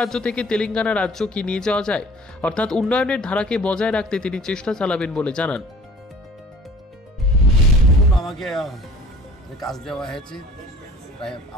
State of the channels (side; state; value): both; normal; correlation 0.49